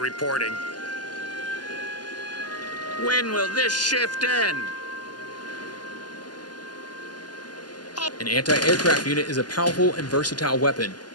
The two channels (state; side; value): late; right; 0.70 ms